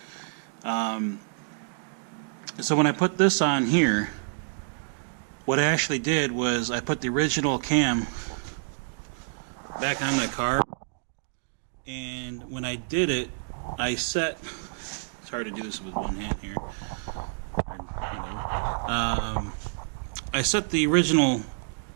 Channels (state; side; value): silent; left; digital silence